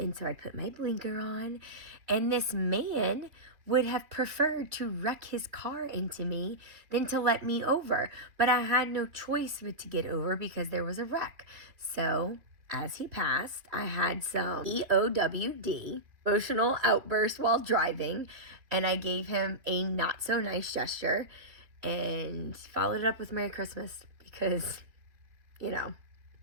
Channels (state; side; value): late; left; 2.5 ms